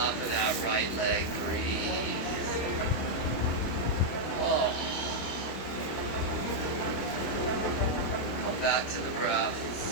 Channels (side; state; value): right; late; 25 ms